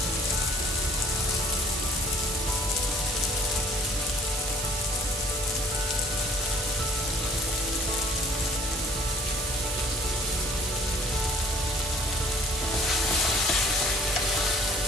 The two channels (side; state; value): right; noise; hiss, 5 dB below the sound